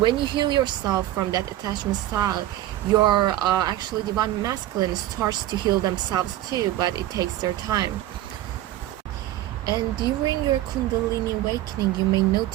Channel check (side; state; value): left; quieter; 14.3 dB